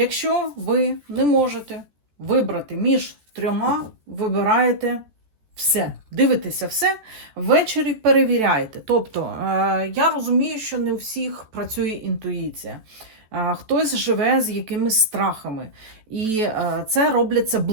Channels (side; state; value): left; late; 14 ms